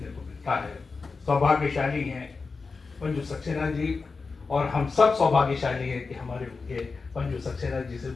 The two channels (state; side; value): quieter; right; 4.4 dB